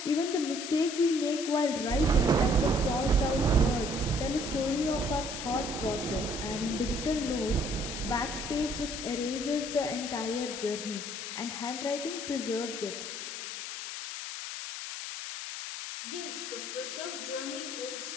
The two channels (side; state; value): left; noise; hiss, 7 dB below the sound